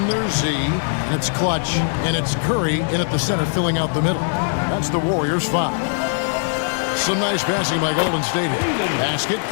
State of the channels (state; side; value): silent; right; digital silence